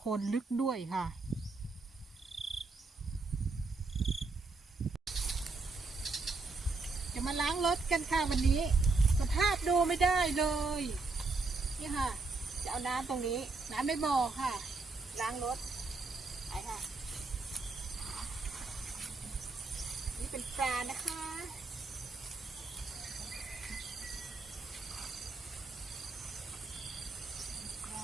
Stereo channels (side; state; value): left; quieter; 3.8 dB